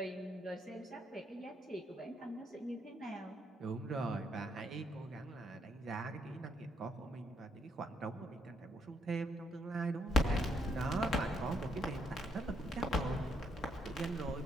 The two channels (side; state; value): both; normal; correlation 0.73